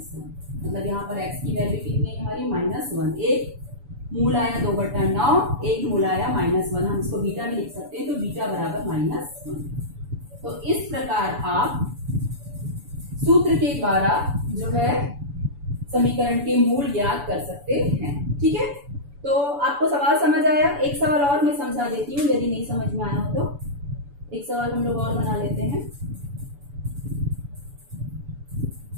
मतलब यहाँ पर x की वैल्यू कितनी है हमारी -1। एक मूल आया 2 बटा 9, एक मूल आया -1, हम इसको बीटा भी लिख सकते हैं, तो बीटा बराबर -1। तो इस प्रकार आप सूत्र के द्वारा जो है समीकरण के मूल ज्ञात कर सकते हैं। ठीक है, तो आपको सवाल समझ आया? एक सवाल और मैं समझा देती हूँ, यदि नहीं समझ में आया हो तो एक सवाल हम लोग और बना लेते हैं।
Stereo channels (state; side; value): late; left; 7.0 ms